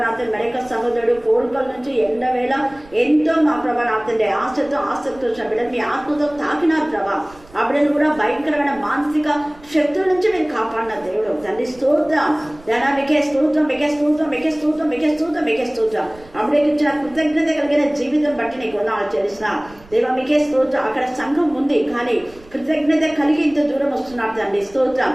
మరొక సహోదరుడు కోరికల నుంచి ఎండవేళ ఎంతో మా ప్రభానాథండి ఆశతో ఆసక్తి వచ్చిన బిడ్డలు మీ ఆత్మతో తాకినారు ప్రభా. ఆ బిడ్డను కూడా భయంకరమైన మానసిక శక్తుల నుంచి మీరు కాపాడిన దేవుడు తండ్రి. స్తోత్రం దేనా. మీకే స్తోత్రం, మీకే స్తోత్రం, మీకే స్తోత్రం, మీకే స్తోత్రం, మీకే స్తోత్రం. అప్పుడేకి ఇచ్చిన కృతజ్ఞత కలిగిన జీవితం బట్టి నీకు వందనాలు చెల్లిస్తున్నా దేవా. మీకే స్తోత్రం. అక్కడ సంఘం ఉంది కానీ కృతజ్ఞత కలిగి ఇంత దూరం వస్తున్నాడు తండ్రి. స్తోత్రం.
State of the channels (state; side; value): noise; right; rumble, 24 dB below the sound